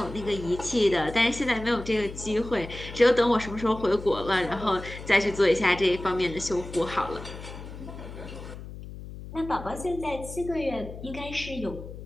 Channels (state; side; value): noise; left; hum, 12 dB below the sound